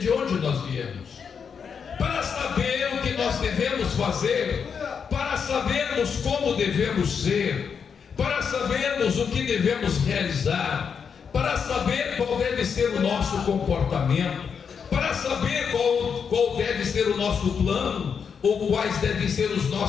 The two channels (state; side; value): quieter; right; 6.6 dB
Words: onde nós viemos, para saber o que nós devemos fazer, para sabermos como devemos ser, para sabermos o que devemos realizar, para saber qual deve ser o nosso comportamento, para saber qual deve ser o nosso plano, ou quais devem ser os